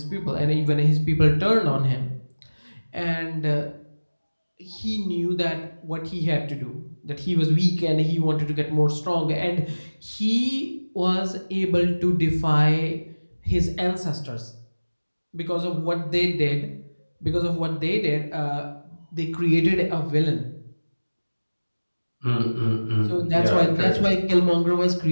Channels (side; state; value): both; inverted; correlation -1.00